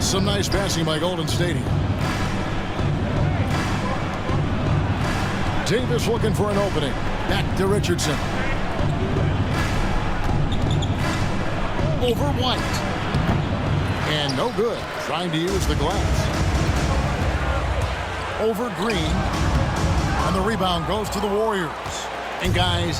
Some nice passing by Golden State here. Davis looking for an opening. Back to Richardson. Over White. And no good. Trying to use the glass. Over Green, and the rebound goes to the Warriors. And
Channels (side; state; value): both; identical; correlation 1.00